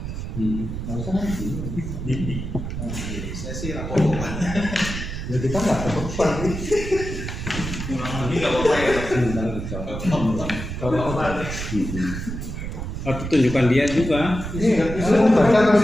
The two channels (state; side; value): noise; right; rumble, 6 dB below the sound